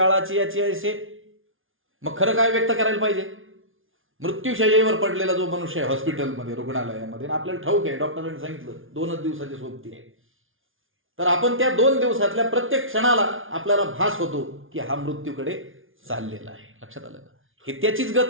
याची ऐसे. मग खरं काय व्यक्त करायला पाहिजे? मृत्यूशय्येवर पडलेला जो मनुष्य आहे हॉस्पिटलमध्ये, रुग्णालयामध्ये, आपल्याला ठाऊक आहे डॉक्टरांनी सांगितलं 2च दिवसाची सोबती आहे, तर आपण त्या 2 दिवसातल्या प्रत्येक क्षणाला आपल्याला भास होतो की हा मृत्यूकडे चाललेला आहे. लक्षात आलं का? हे त्याचीच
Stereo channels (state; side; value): late; left; 0.58 ms